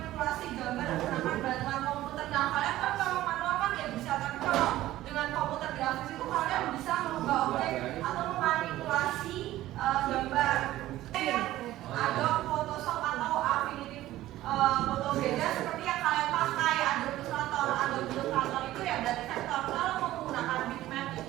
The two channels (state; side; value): quieter; left; 15.2 dB